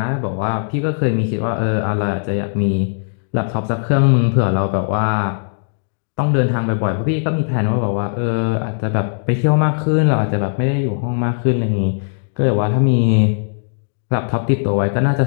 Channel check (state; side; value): silent; right; digital silence